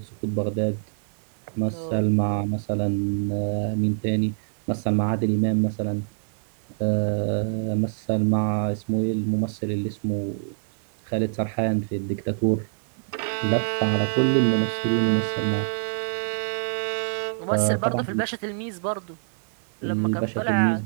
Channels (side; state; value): left; silent; digital silence